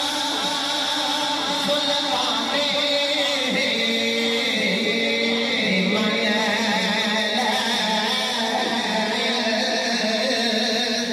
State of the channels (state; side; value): identical; both; correlation 1.00